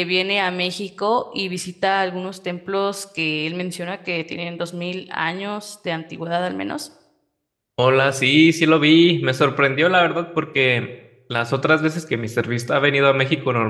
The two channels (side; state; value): both; identical; correlation 1.00